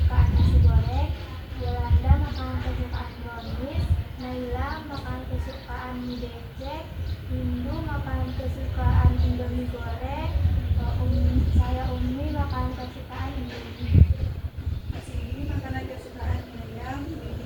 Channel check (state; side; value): identical; both; correlation 1.00